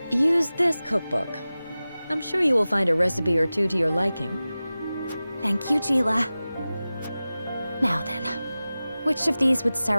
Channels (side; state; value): both; inverted; correlation -0.96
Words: Use this cookbook. I'm sure you will find a recipe or two to your liking. Thank you, Gila. Now then, which of these would